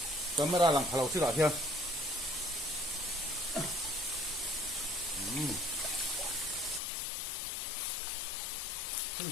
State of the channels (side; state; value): right; drops out; at 6.8 s